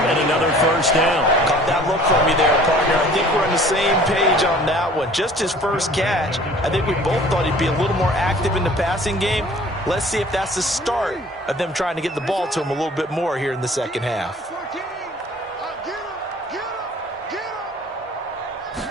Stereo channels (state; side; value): normal; both; correlation 0.50